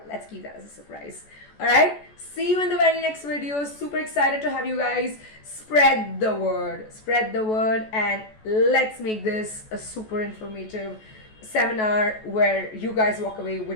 let's keep that as a surprise. All right. See you in the very next video. Super excited to have you guys. Spread the word. Spread the word, and let's make this a super informative seminar where you guys walk away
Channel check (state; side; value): late; right; 14 ms